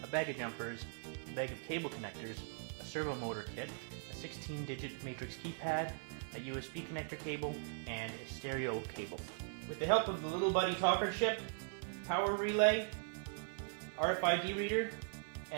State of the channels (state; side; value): silent; left; 51 dB below the other